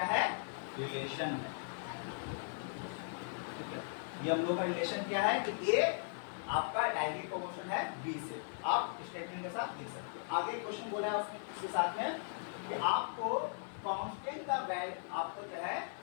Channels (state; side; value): silent; right; 52 dB below the other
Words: है? रिलेशन है, ठीक है। ये हम लोग का रिलेशन क्या है कि ए आपका डायरेक्टली प्रोपोर्शनल है बी से, आप स्टेटमेंट के साथ लिख सकते हो। आगे क्वेश्चन बोला है उसके साथ में कि आपको कांस्टेंट का आपको जो है